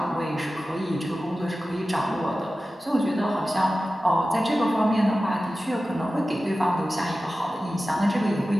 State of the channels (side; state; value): both; normal; correlation 0.95